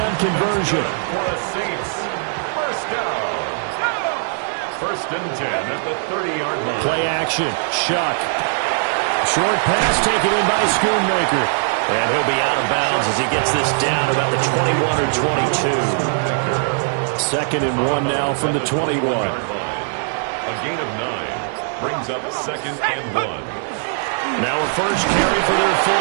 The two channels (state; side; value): silent; left; 66 dB below the other